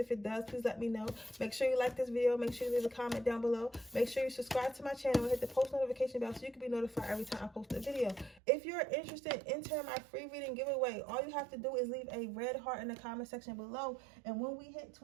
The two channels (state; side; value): drops out; left; at 8.4 s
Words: it does, please let me know. Make sure you like this video. Make sure you leave a comment down below. Make sure you subscribe to my channel and hit the post notification bell so you can be notified every time I post a video. If you're interested in entering my free reading giveaway, all you have to do is leave a red heart in the comment section below. And when we hit